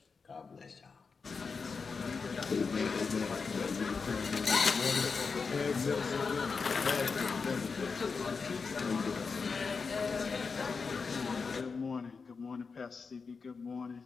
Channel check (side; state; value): right; quieter; 5.0 dB